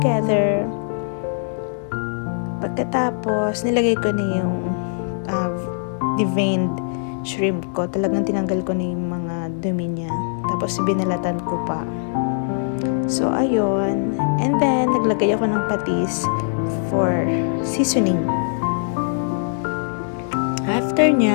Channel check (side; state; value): right; silent; digital silence